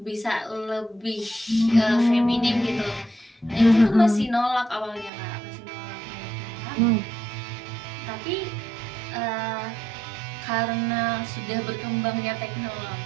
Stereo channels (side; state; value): left; drops out; at 5.1 s